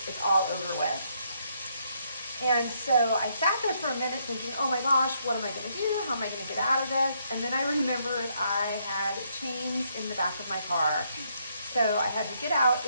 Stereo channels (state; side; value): inverted; both; correlation -0.73